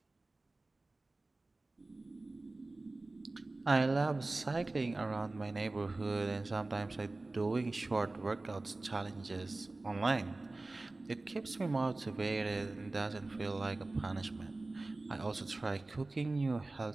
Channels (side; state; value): left; quieter; 3.1 dB